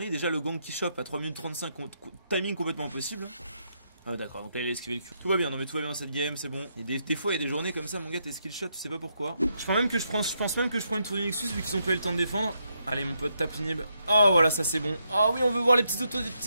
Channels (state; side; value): inverted; both; correlation -0.79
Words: déjà le gang qui chope à 3 minutes 35, timing complètement impossible. Ah d'accord, donc là il a esquivé le cul. Tout va bien, non mais tout va bien dans cette game, c'est bon. Et des fois il y a des journées comme ça, mon gars, t'es skillshot, tu sais pas pourquoi. Je pense même que je prends une tour Nexus vu qu'ils ont pas eu le temps de défendre. Allez mon pote, tape inhib. Oh voilà, ça c'est bon. Oh oui, on veut voir les petits autos des